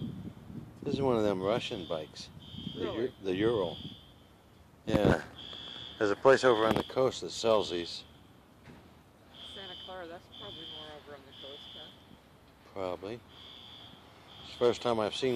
This is one of them Russian bikes. Really? The Ural. Yeah. There's a place over on the coast that sells these. Santa Clara, that's probably more over on the coast, huh? Probably. It's the first time I've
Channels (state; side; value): identical; both; correlation 1.00